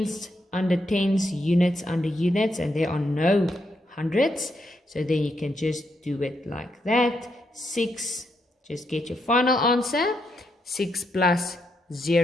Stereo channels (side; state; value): both; normal; correlation 0.80